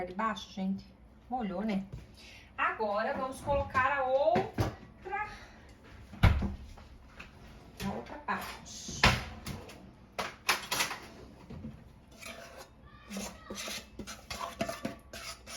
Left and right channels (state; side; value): identical; both; correlation 1.00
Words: de baixo, gente? Molhou, né? Agora vamos colocar a outra parte.